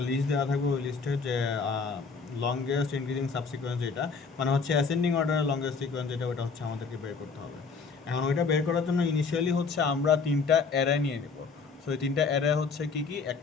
লিস্ট দেওয়া থাকবে। ওই লিস্টের যে লংগেস্ট ইনক্রিজিং সাবসিকোয়েন্স যেটা, মানে হচ্ছে অ্যাসেন্ডিং অর্ডারের লংগেস্ট সিকোয়েন্স যেটা, ওটা হচ্ছে আমাদেরকে বের করতে হবে। এখন ওইটা বের করার জন্য ইনিশিয়ালি হচ্ছে আমরা তিনটা অ্যারে নিয়ে নেব। সো এই তিনটা অ্যারে হচ্ছে কি কি,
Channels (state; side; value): quieter; right; 4.9 dB